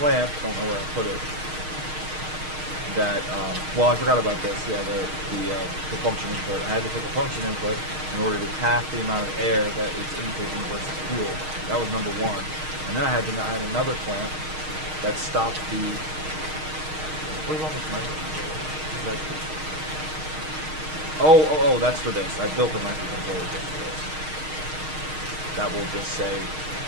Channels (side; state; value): left; late; 6.4 ms